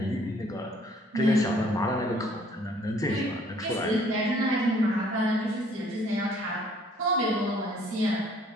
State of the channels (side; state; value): both; normal; correlation 0.59